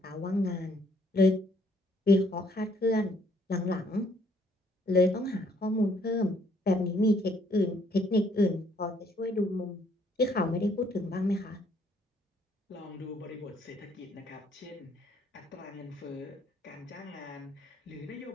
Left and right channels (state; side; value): normal; both; correlation 0.66